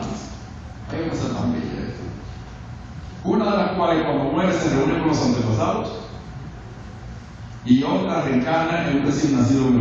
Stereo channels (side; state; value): both; identical; correlation 1.00